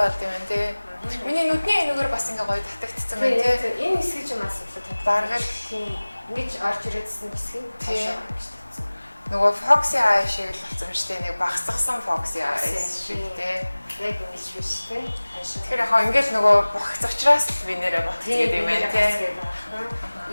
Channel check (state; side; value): inverted; both; correlation -1.00